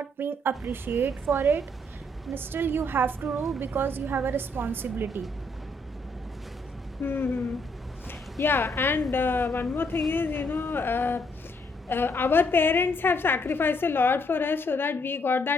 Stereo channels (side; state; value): both; normal; correlation 0.71